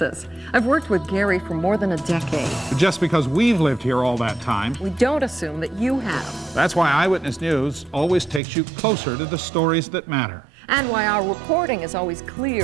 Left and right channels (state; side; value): drops out; left; at 8.4 s